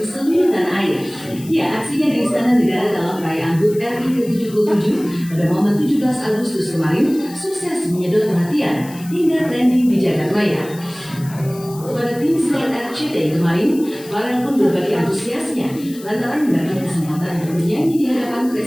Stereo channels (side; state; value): left; noise; hiss, 19 dB below the sound